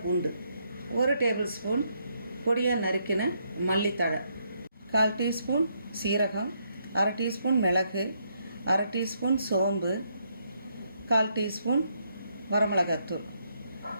பூண்டு, 1 டேபிள் ஸ்பூன் பொடியாக நறுக்கின மல்லித்தழை, 1/4 டீஸ்பூன் சீரகம், 1/2 டீஸ்பூன் மிளகு, 1/2 டீஸ்பூன் சோம்பு, 1/4 டீஸ்பூன் வரமிளகாத்தூள்.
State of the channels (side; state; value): both; inverted; correlation -0.76